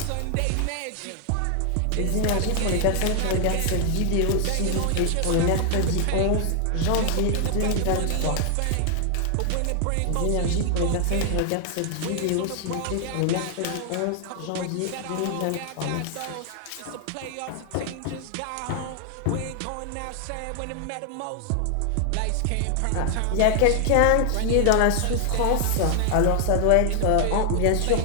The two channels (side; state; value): both; different; correlation 0.00